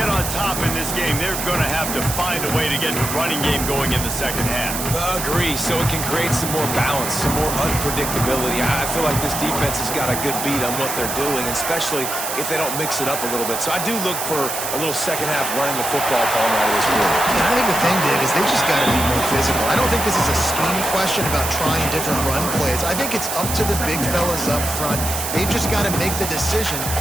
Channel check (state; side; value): noise; right; hiss, 4 dB below the sound